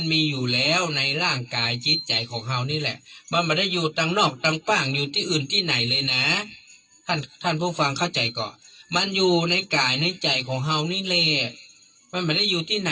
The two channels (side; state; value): both; identical; correlation 1.00